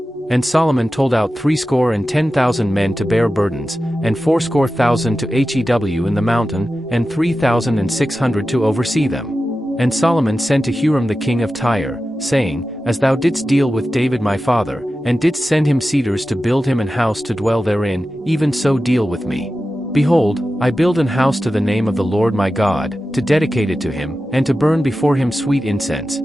And Solomon told out 70,000 men to bear burdens, and 80,000 to hew in the mountain, and 3,600 to oversee them. And Solomon sent to Huram the king of Tyre, saying, As thou didst deal with David my father, and didst send him cedars to build him an house to dwell therein, even so deal with me. Behold, I build an house to the name of the Lord my God, to dedicate it to him, and to burn before him sweet incense,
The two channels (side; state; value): both; normal; correlation 0.93